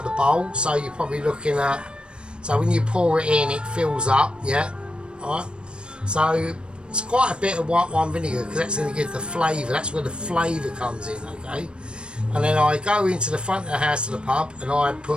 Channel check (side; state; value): left; late; 0.055 ms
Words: the bowl, so you're probably looking at, so when you pour it in, it fills up, yeah, alright, so it's quite a bit of white wine vinegar because that's going to give the flavour, that's where the flavour comes in, okay. And then I go into the front of the house to the pub and I